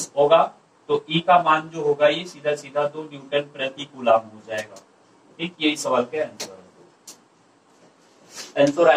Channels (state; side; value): identical; both; correlation 1.00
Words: होगा। तो ई का मान जो होगा ये सीधा सीधा 2 न्यूटन प्रति कूलाम हो जाएगा। ठीक, यही सवाल का आंसर है। आंसर